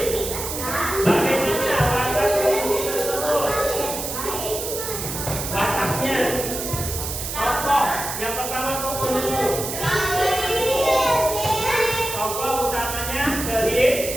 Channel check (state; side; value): noise; right; hiss, 5 dB below the sound